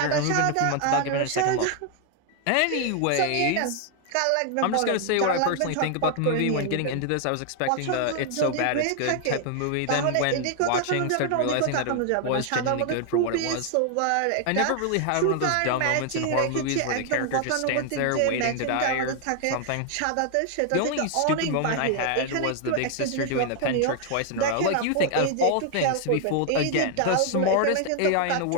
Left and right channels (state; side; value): different; both; correlation 0.00